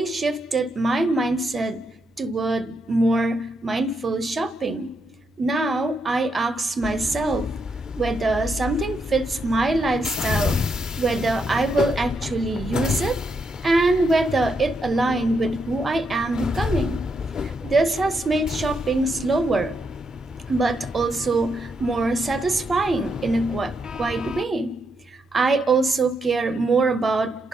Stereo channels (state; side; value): normal; both; correlation 0.80